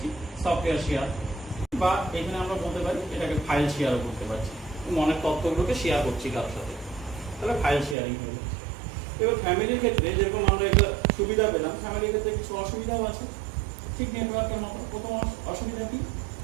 সফটওয়্যার শেয়ার, বা এখানে আমরা বলতে পারি এটাকে ফাইল শেয়ারও করতে পারছি, মনের তথ্যগুলোকে শেয়ার করছি কারোর সাথে, তাহলে ফাইল শেয়ারিং হয়ে যাচ্ছে। এবার ফ্যামিলির ক্ষেত্রে যেরকম আমরা একটা সুবিধা পেলাম, ফ্যামিলির ক্ষেত্রে কিছু অসুবিধাও আছে, ঠিক নেটওয়ার্কের মতো। প্রথম অসুবিধা কি,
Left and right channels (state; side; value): drops out; left; at 8.0 s